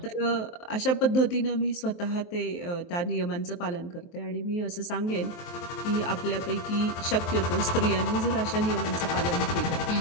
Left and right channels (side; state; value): right; late; 23 ms